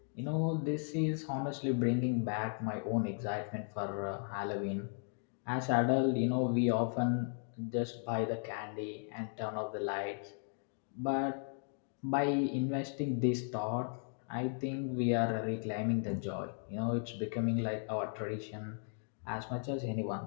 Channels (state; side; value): silent; right; 54 dB below the other